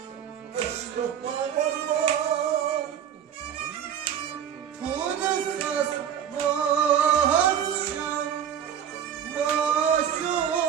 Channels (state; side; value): quieter; left; 9.1 dB